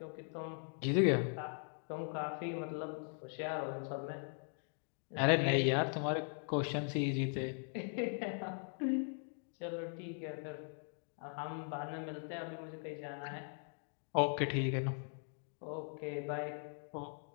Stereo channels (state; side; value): silent; right; 51 dB below the other